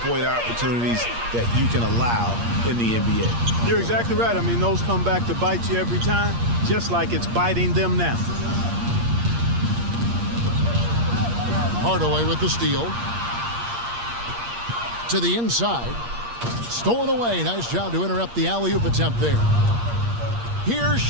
opportunities that you can allow in the NBA. You're exactly right. I mean, those come back to bite you every time, just like it's biting them now. Hardaway with the steal. To the inside. Stolen away. Nice job to interrupt the alley-oop attempt there. Here's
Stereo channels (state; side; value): late; left; 8.5 ms